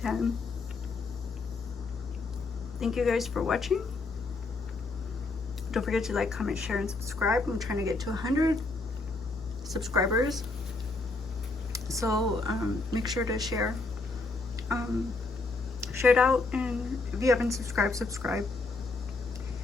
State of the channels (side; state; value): right; quieter; 3.5 dB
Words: Thank you guys for watching. Don't forget to like, comment, share, and subscribe. I'm trying to get to 100 subscribers. So make sure to share it out, and if you haven't subscribed, subscribe.